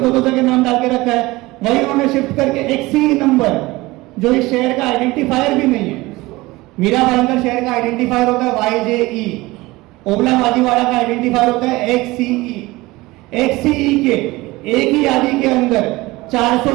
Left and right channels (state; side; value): quieter; left; 20.5 dB